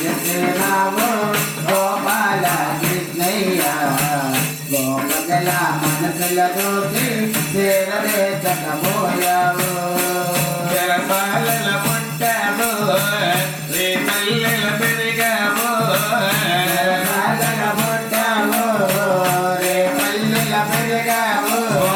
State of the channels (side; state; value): both; identical; correlation 1.00